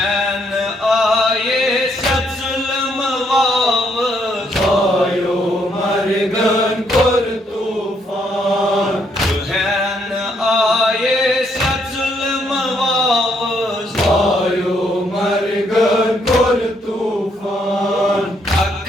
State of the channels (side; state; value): both; normal; correlation 0.72